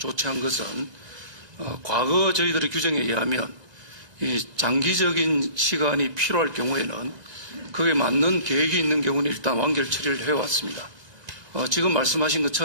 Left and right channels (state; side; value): late; left; 1.9 ms